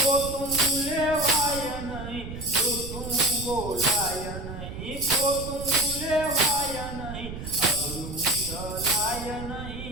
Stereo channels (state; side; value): noise; right; rumble, 9 dB below the sound